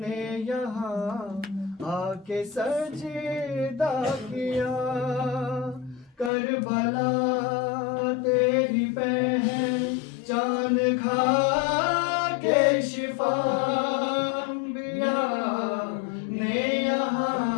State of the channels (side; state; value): right; drops out; at 6.3 s